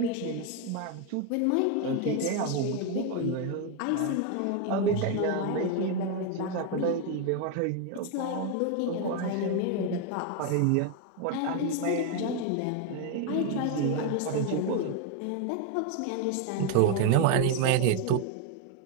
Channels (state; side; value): different; both; correlation 0.01